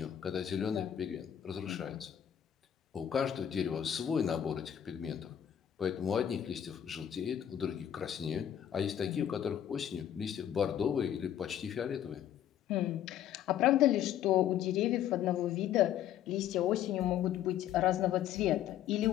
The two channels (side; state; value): right; quieter; 10.4 dB